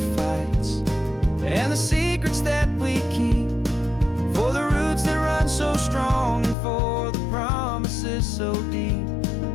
fights and the secrets that we keep, for the roots that run so strong and for the promises so deep.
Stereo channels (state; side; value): drops out; right; at 6.6 s